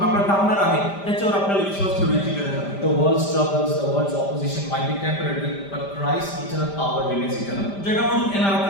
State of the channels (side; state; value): right; late; 5.1 ms